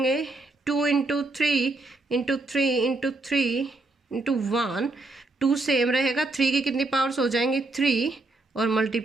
2 into 3 into 3 into 3 into 1, 2 same रहेगा, 3 की कितनी पावर्स हो जाएंगी 3 और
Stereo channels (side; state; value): left; quieter; 3.2 dB